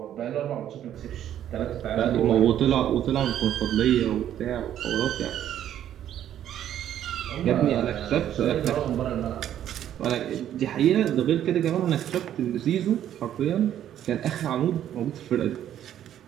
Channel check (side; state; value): left; quieter; 10.9 dB